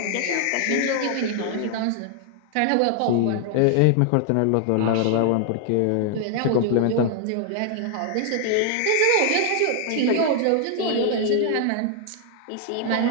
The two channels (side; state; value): both; different; correlation 0.00